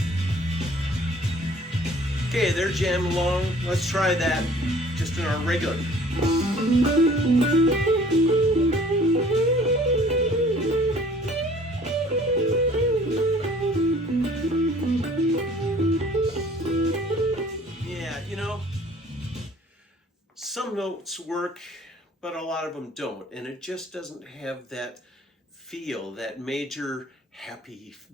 Okay, they're jamming along. Let's try that just in our regular. Yeah, some notes work, but a lot of them don't. And it just doesn't have that feel, that major, happy,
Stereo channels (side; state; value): both; normal; correlation 0.53